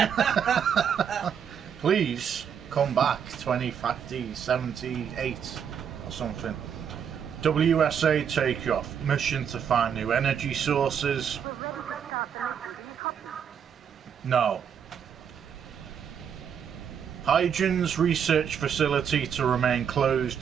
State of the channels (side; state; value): left; quieter; 7.9 dB